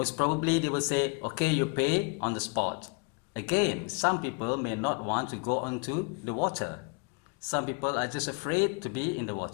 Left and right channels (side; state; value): right; quieter; 33.4 dB